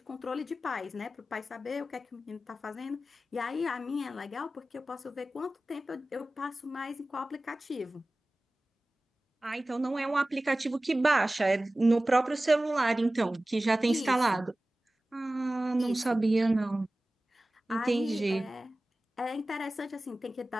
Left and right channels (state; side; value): normal; both; correlation 0.96